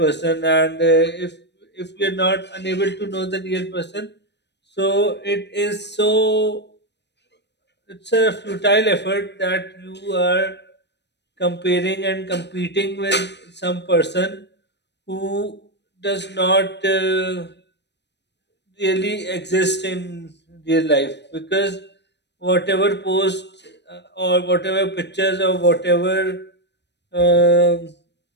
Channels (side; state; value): right; late; 0.50 ms